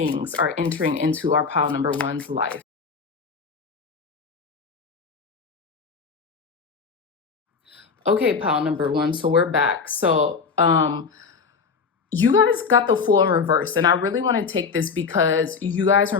are entering into our pile number one's life? Okay, pile number one, so we're back. So you guys got the Fool in reverse, and I really want to take this because you guys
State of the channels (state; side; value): quieter; right; 5.3 dB